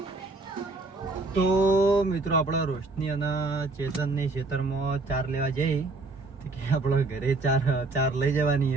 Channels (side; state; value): left; quieter; 3.4 dB